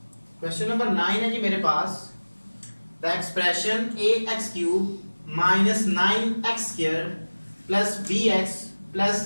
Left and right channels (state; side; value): inverted; both; correlation -1.00